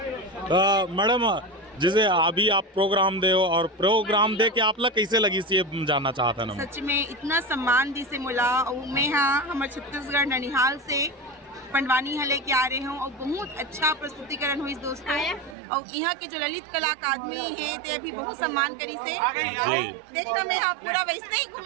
मैडम, जैसे अभी आप प्रोग्राम दे हो और प्रोग्राम दे के आपला कैसे लगी सी ये जानना चाहता ना। सच में इतना सम्मान दी से मिला और मैं हाँ हमारे छत्तीसगढ़ ननिहाल से पंडवानी हले के आ रहे हूँ और बहुत अच्छा प्रस्तुतिकरण हुई दोस्तों। और यहाँ के जो ललित कला अकादमी है ते अभी बहुत सम्मान करी से देखना मैं यहाँ पूरा वैसे ही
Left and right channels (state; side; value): drops out; left; at 15.6 s